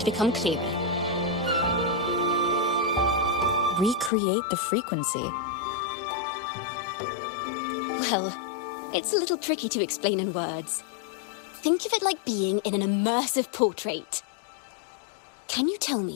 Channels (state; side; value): drops out; right; at 4.1 s